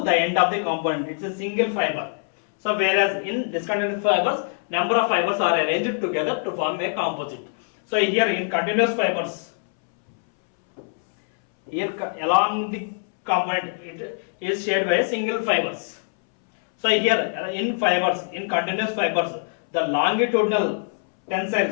the end of the component. It's a single fiber. So whereas in discontinuous fibers, number of fibers are arranged together to form a composite. So here in continuous fibers, here along the component it is shared by single fibers. So here in continuous fibers, the longitudinal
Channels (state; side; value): silent; right; 63 dB below the other